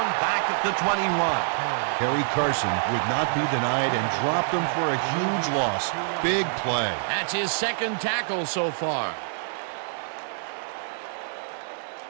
back at the 21. Harry Carson would not be denied and dropped him for a huge loss. Big play. That's his second tackle so far.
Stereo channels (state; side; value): silent; left; 61 dB below the other